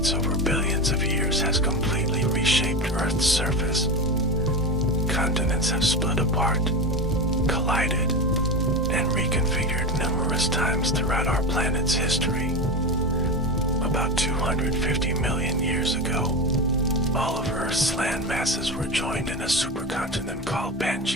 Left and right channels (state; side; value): normal; both; correlation 0.20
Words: over billions of years has completely reshaped Earth's surface. Continents have split apart, collided, and reconfigured numerous times throughout our planet's history. About 250 million years ago, all of Earth's land masses were joined in a supercontinent called